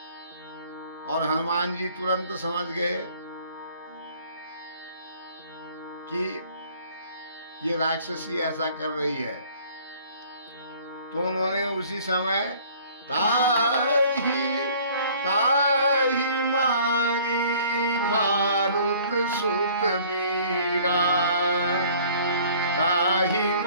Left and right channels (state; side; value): inverted; both; correlation -0.53